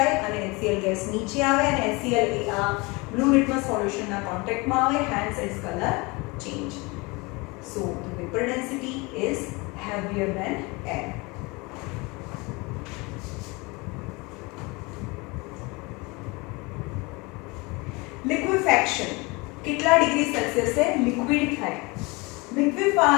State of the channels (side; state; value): right; quieter; 26.0 dB